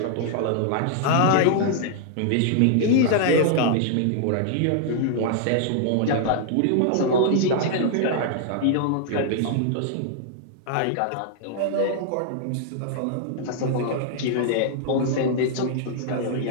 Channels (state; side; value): different; both; correlation -0.01